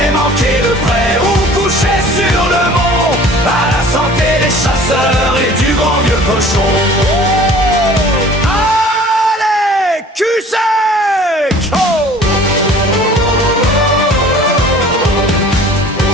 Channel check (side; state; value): both; normal; correlation 0.48